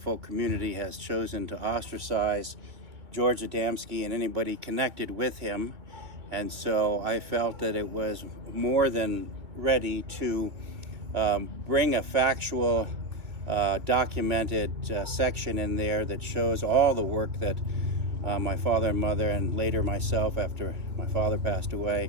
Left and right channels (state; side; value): late; left; 2.8 ms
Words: community has chosen to ostracize George Adamski and anybody connected with him. And so I felt that it was more than ready to bring a factual, documented section in there that shows all the work that my father and mother, and later myself after my father passed